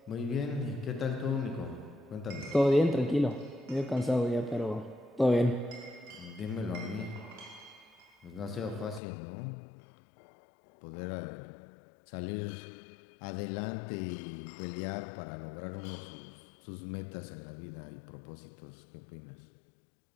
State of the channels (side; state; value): right; drops out; at 9.0 s